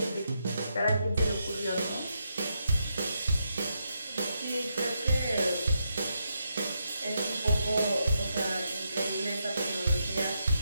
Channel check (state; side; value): inverted; both; correlation -0.82